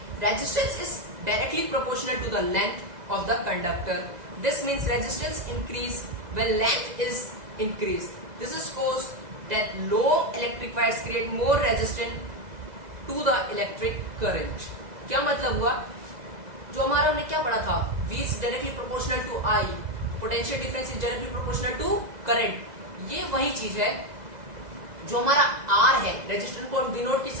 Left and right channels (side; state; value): left; late; 2.0 ms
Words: Resistance is directly proportional to the length of the conductor. This means resistance increase when length is increased. This is caused that long electric wires create more resistance to the electric current. क्या मतलब हुआ? जो हमारा हमने क्या पढ़ा था, V is directly proportional to I, potential difference is directly proportional to current. ये वही चीज है जो हमारा R है, रेजिस्टेंस को डिनोट